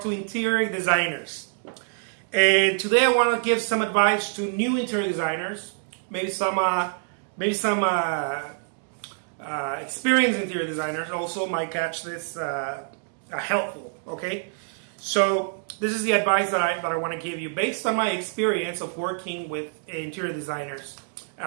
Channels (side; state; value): left; silent; digital silence